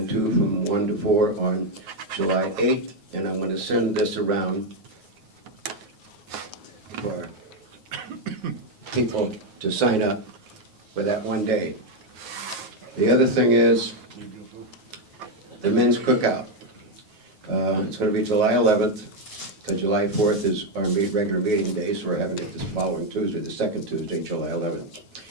2 from 1 to 4 on July 8th, and I'm gonna send this around for people to sign up for that one day. The other thing is the men's cookout. It's gonna be July 11th, because July 4th is our regular meeting day, so we're having it this following Tuesday, the second Tuesday, July 11th.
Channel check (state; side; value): late; left; 9.4 ms